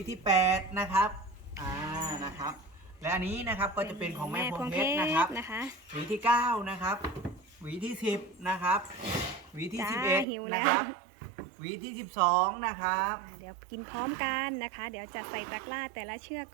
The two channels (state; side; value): drops out; left; at 10.2 s